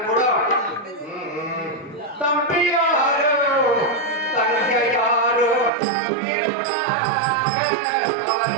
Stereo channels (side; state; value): left; drops out; at 5.7 s